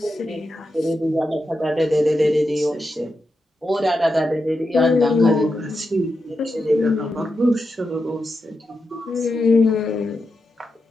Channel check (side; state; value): both; normal; correlation 0.88